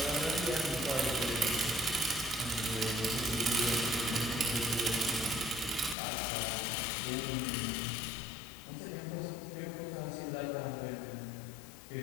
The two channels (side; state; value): right; drops out; at 6.0 s